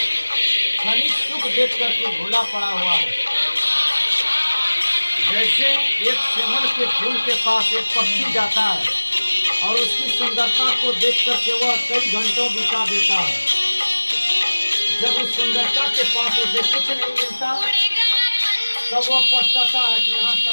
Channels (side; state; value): both; inverted; correlation -1.00